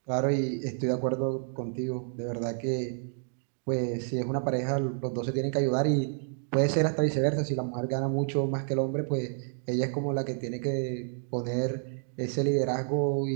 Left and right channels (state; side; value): silent; left; 58 dB below the other